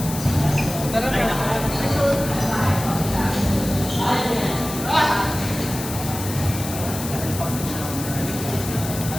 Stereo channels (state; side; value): noise; left; hiss, 9 dB below the sound